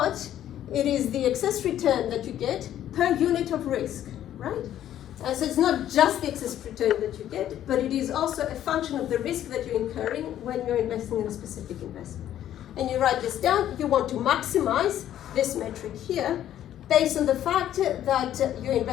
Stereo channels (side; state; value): right; quieter; 11.6 dB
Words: It is the excess return that you get per unit of risk, right? So it's not just the excess return that you get, but it is also a function of the risk that you're incurring when you're investing in a specific investment. And you write this down, you want to maximize this metric here based on the fact that you're